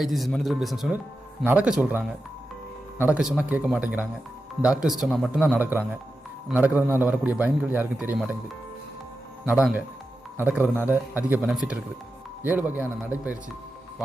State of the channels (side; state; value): both; normal; correlation 0.90